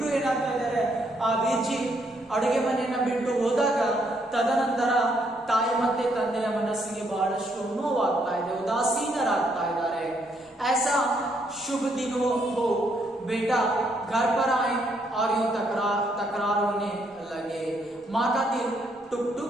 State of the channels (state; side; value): normal; both; correlation 0.72